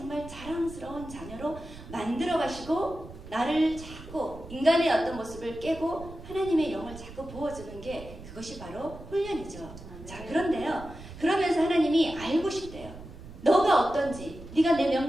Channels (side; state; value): right; noise; rumble, 15 dB below the sound